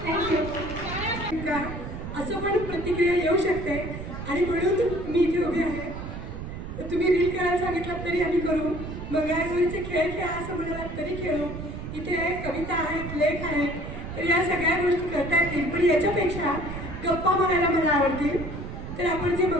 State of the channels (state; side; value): noise; right; rumble, 8 dB below the sound